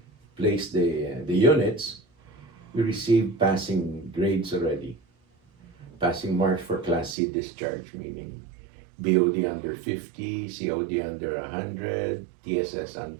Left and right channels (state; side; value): drops out; left; at 7.2 s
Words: placed the units, we received passing grades already. Passing marks for Class C discharge, meaning BOD under 50, COD under 100, TSS